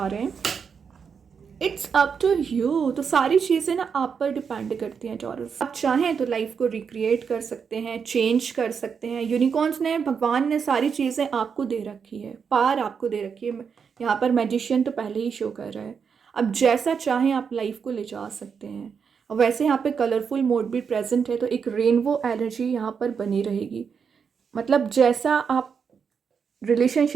रहे हैं। It's up to you. तो सारी चीज़ें ना आप पर डिपेंड करती हैं टॉरस। आप चाहें तो लाइफ को रिक्रिएट कर सकते हैं, चेंज कर सकते हैं। यूनिकॉर्न्स ने, भगवान ने सारी चीज़ें आपको दे रखी है, पार आपको दे रखी है। यहाँ पर मैजिशियन तो पहले ही शो कर रहा है। अब जैसा चाहें आप लाइफ को ले जा सकते हैं। और वैसे यहाँ पे कलरफुल मोड भी प्रेजेंट है, तो एक रेनबो एनर्जी यहाँ पर बनी रहेगी। मतलब जैसा आप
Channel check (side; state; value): left; quieter; 6.4 dB